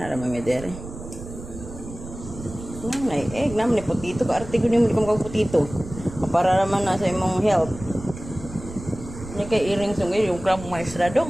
naman may dere. Namay egg, namay putito. Kaarte ko niyo mo kang putito. Para naman na sa imong health. Ini kay iring sungay yung crab maestra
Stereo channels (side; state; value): right; noise; rumble, 13 dB below the sound